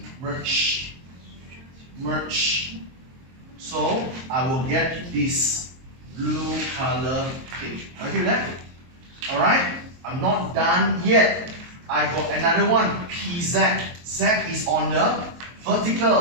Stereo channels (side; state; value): left; late; 23 ms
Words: Merge. Merge. So I will get this blue color thing. Okay with that? Alright? I'm not done yet. I got another one. PZ. Z is on the